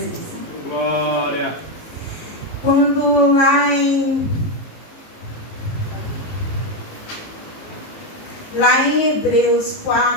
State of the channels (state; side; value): late; right; 18 ms